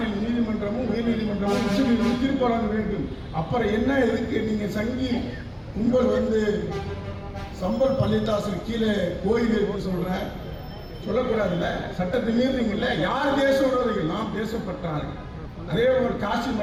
நீதிமன்றமும் உயர் நீதிமன்றமும் உச்ச நீதிமன்றம் தீர்ப்பு வழங்க வேண்டும். அப்புறம் என்ன எதுக்கு நீங்க சங்கி கும்பல் வந்து சம்பல் பள்ளித்தாசல் கீழே கோயில் இருக்குன்னு சொல்லக்கூடாதுல்ல? சட்டத்தை மீறினீங்கல்ல. யார் தேச விரோதிகள்? நாம் தேசப்பட்டார்கள். அதே ஒரு காசி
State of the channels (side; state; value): both; identical; correlation 1.00